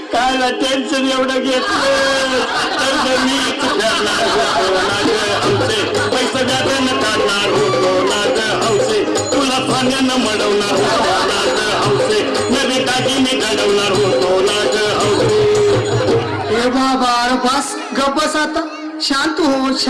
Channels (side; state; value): both; identical; correlation 1.00